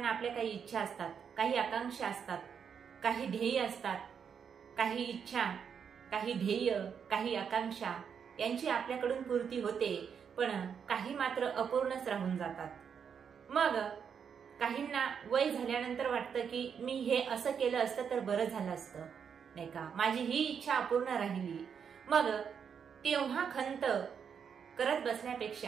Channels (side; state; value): left; quieter; 7.1 dB